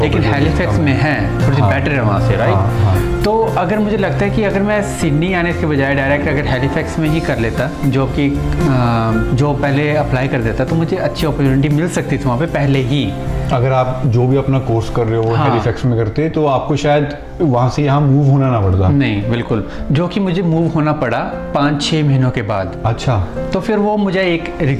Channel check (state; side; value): identical; both; correlation 1.00